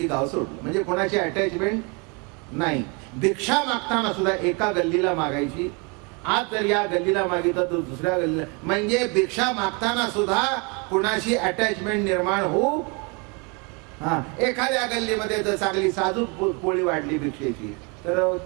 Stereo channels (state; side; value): quieter; left; 31.7 dB